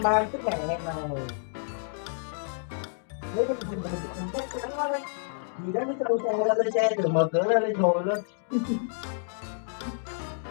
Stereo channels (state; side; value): silent; right; digital silence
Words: ba cái mẹ này đấy cái mình không chắc chắn quá đấy gì đó nó cho xe ra lên xe từ mở cửa ra lên thôi luôn